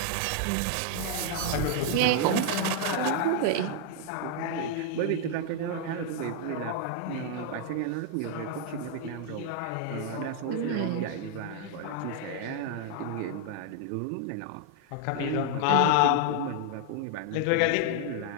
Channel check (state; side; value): different; both; correlation 0.00